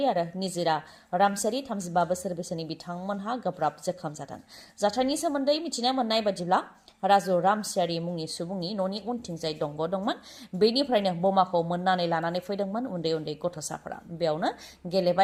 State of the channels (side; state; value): both; identical; correlation 1.00